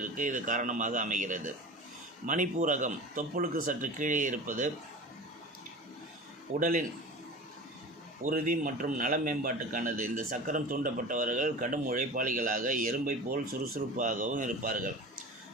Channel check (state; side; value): normal; both; correlation 0.35